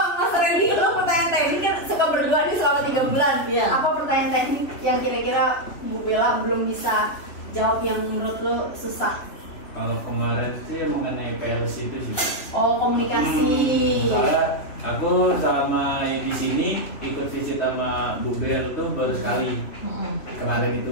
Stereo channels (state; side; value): late; right; 3.2 ms